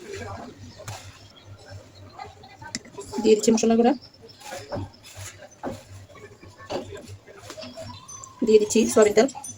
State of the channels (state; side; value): identical; both; correlation 1.00